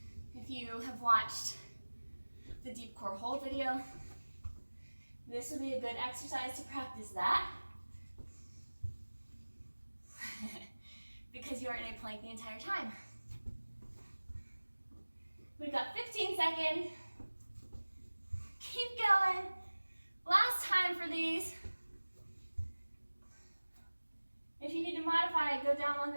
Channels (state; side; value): inverted; both; correlation -1.00